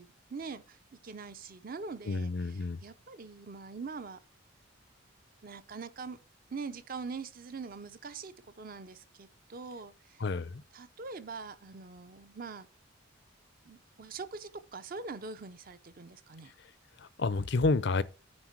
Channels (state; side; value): normal; both; correlation 0.39